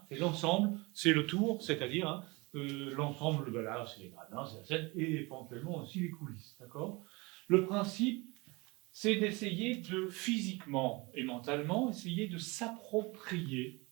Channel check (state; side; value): quieter; left; 25.4 dB